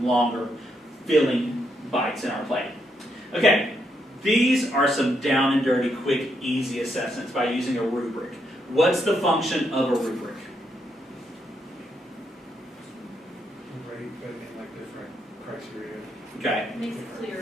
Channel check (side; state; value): both; normal; correlation 0.78